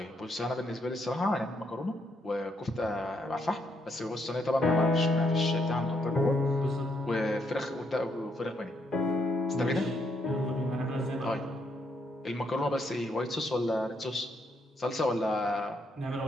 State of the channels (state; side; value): normal; both; correlation 0.75